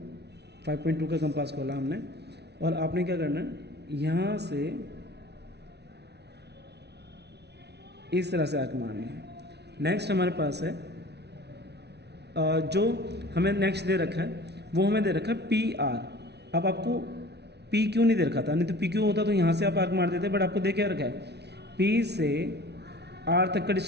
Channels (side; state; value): left; late; 0.49 ms